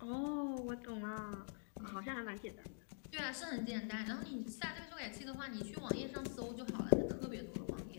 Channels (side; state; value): right; silent; digital silence